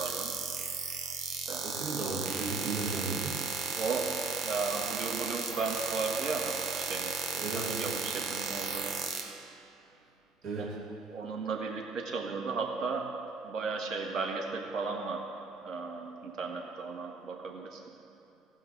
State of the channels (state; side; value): quieter; left; 4.0 dB